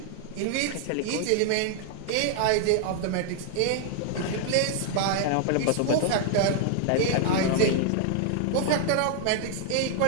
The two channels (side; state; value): both; different; correlation 0.00